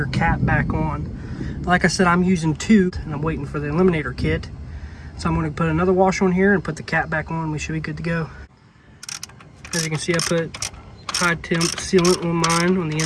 cap back on. Like I said, I'm using 2 and I'm waiting for the eliminator kit. So I'm going to put another washer on here and put the cap back on. We should be good to go. As you can see, I put high temp sealant on mine on the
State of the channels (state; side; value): identical; both; correlation 1.00